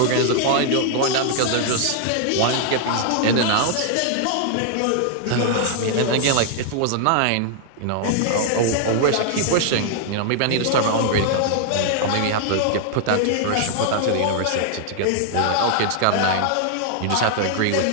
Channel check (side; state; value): both; different; correlation -0.01